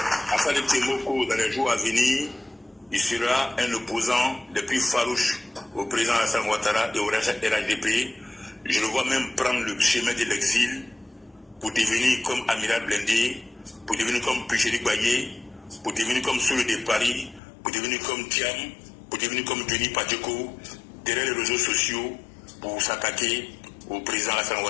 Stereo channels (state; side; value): drops out; right; at 17.4 s